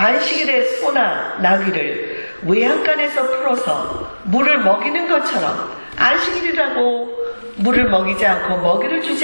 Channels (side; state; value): both; inverted; correlation -1.00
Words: 소나 나귀를 외양간에서 풀어서 물을 먹이는 것처럼 안식일이라고 물을 먹이지 않고 먹이를